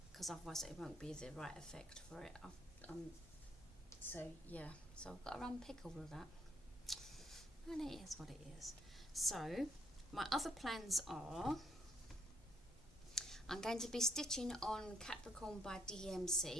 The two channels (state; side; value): normal; both; correlation 0.71